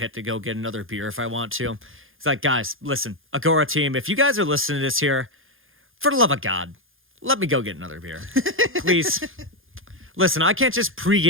to go get another beer if I want to. It's like, guys, listen, Agora team, if you guys are listening to this here, for the love of God, let me go get another beer. Please. Listen, I can't just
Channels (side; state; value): left; late; 0.59 ms